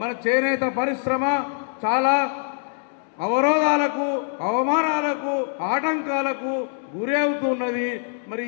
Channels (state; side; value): silent; right; digital silence